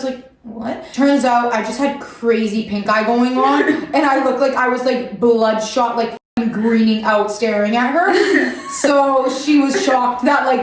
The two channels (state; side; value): identical; both; correlation 1.00